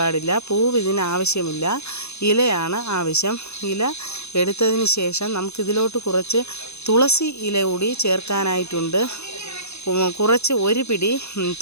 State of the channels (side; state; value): right; late; 0.80 ms